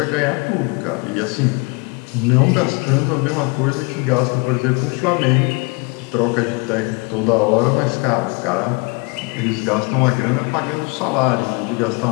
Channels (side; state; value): right; quieter; 30.1 dB